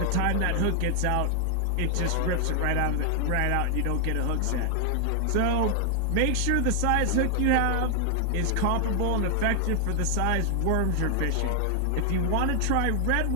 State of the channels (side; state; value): both; different; correlation 0.00